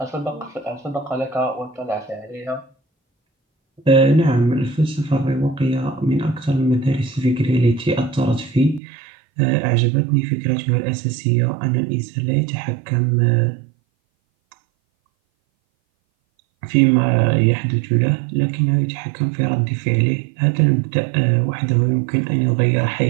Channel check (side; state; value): left; drops out; at 8.8 s